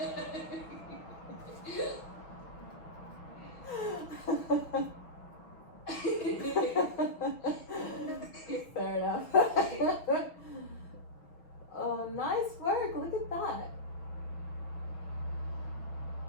Fair enough. Oh, nice work. Look at that.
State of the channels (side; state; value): right; late; 6.2 ms